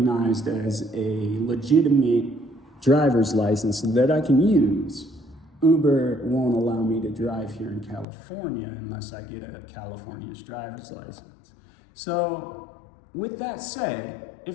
as a legitimate driver's license that I can use. Uber won't allow me to drive here in California unless I get a California's driver's license. So with that said,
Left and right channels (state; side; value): drops out; right; at 8.1 s